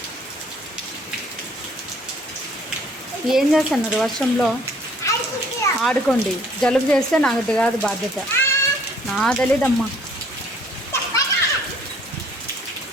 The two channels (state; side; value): normal; both; correlation 0.58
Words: ఏం చేస్తున్నారు వర్షంలో? ఆడుకోండి. జలుబు చేస్తే నాకు కాదు బాధ్యత, నా తెలీదమ్మా.